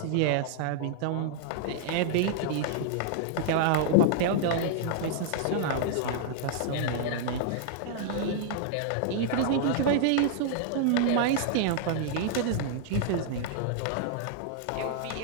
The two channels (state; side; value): different; both; correlation -0.01